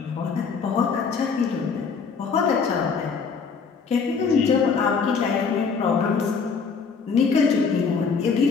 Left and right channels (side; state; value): right; quieter; 5.4 dB